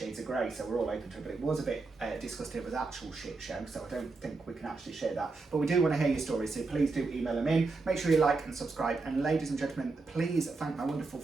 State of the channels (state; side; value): quieter; left; 3.8 dB